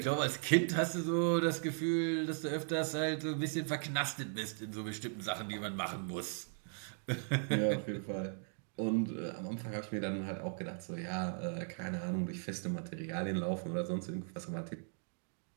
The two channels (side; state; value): left; silent; 53 dB below the other